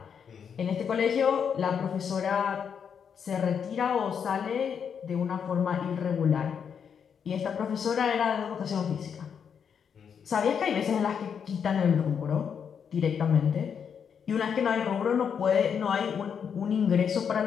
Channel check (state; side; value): quieter; right; 7.2 dB